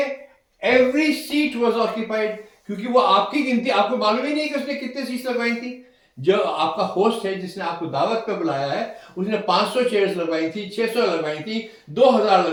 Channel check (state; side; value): identical; both; correlation 1.00